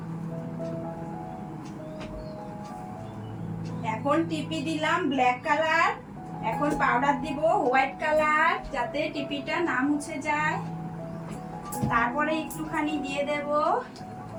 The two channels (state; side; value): identical; both; correlation 1.00